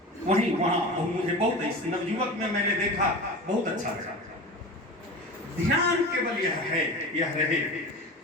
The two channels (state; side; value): normal; both; correlation 0.31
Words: वहां मुझे बहुत नवयुवक में मैंने देखा, बहुत अच्छा लगा। ध्यान केवल यह रहे,